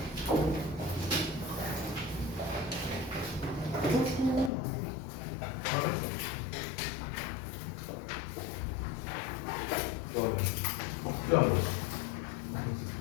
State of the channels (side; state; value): right; drops out; at 4.5 s